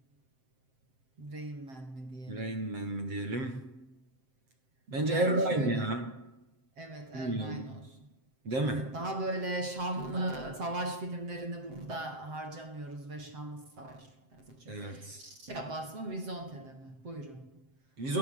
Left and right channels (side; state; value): left; late; 7.6 ms